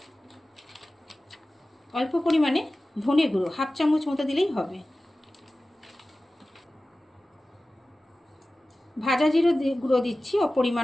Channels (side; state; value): both; normal; correlation 0.96